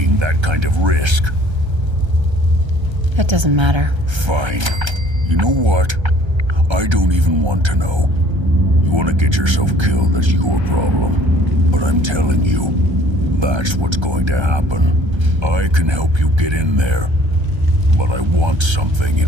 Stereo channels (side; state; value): left; late; 1.3 ms